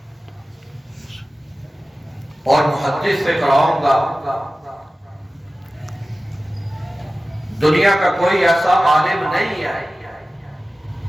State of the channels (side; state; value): both; normal; correlation 0.96